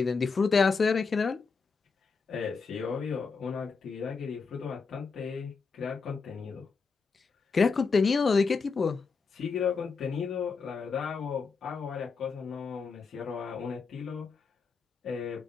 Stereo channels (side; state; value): right; quieter; 4.9 dB